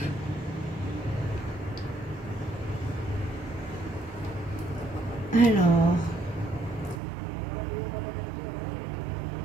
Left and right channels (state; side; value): drops out; left; at 7.0 s